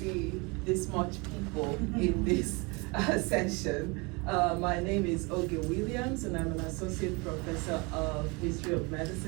this much people in this session. My name is Oge Williams, and I'm an associate professor of history of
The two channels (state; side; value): quieter; left; 28.5 dB